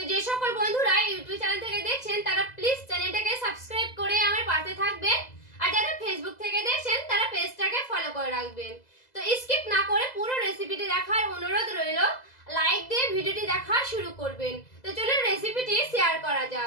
যে সকল বন্ধুরা ইউটিউব চ্যানেল থেকে দেখছেন তারা প্লিজ চ্যানেলটাকে সাবস্ক্রাইব করে আমার পাশে থাকবেন, আর যারা ফেসবুক থেকে দেখছেন তারা পেজটাকে ফলো করে রাখবেন। তো স্কিপ না করে পুরো রেসিপিটি দেখার অনুরোধ রইল। লাইক দিয়ে ভিডিওটি দেখা শুরু করবেন। তো চলুন রেসিপিটি শেয়ার করা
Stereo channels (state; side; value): late; right; 2.0 ms